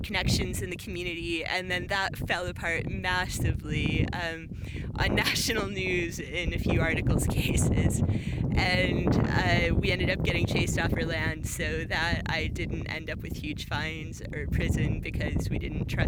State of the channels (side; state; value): both; identical; correlation 1.00